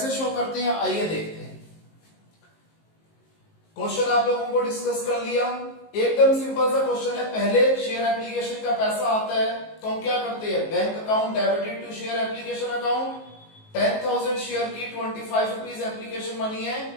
शो करते हैं, आइए देखते हैं। क्वेश्चन आप लोगों को डिस्कस कर लिया। एकदम सिंपल सा क्वेश्चन है। पहले शेयर एप्लीकेशन का पैसा आता है तो हम क्या करते हैं? Bank account debited to share application account. 10,000 share की 25 रुपीज एप्लीकेशन मनी है,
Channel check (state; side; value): late; right; 19 ms